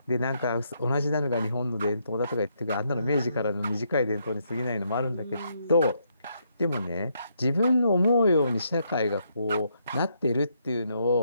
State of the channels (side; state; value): both; inverted; correlation -0.76